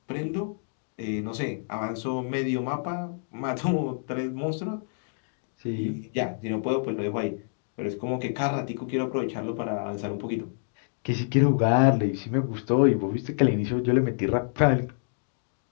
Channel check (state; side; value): silent; right; digital silence